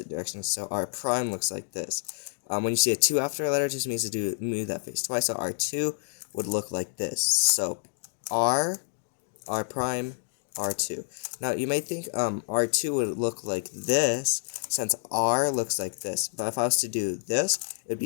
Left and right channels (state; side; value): silent; right; digital silence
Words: direction, so R prime looks like this. When you see a 2 after a letter, it just means to move that face twice, so R2 would look like this. So R prime, R2. Now, you may think R2 would look like this, since R looks like this. But if I was to do this, it would